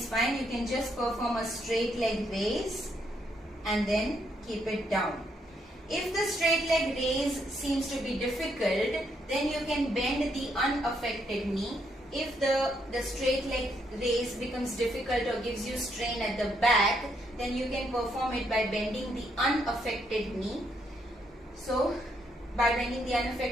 fine. You can just perform a straight leg raise and then keep it down. If the straight leg raise seems to be difficult, then you can bend the unaffected knee. If the straight leg raise becomes difficult or gives you strain at the back, then you can perform it by bending the unaffected knee. So by bending the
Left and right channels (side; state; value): both; normal; correlation 0.75